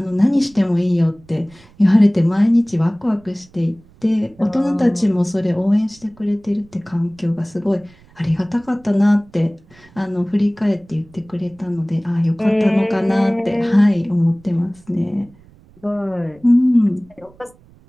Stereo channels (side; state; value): right; noise; rumble, 27 dB below the sound